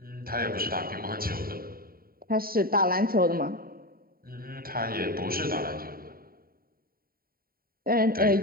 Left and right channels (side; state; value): left; late; 0.43 ms